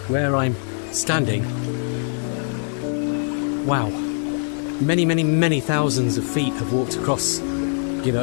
where I'm standing, wow, many, many, many thousands of feet have walked across, you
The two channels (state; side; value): silent; right; digital silence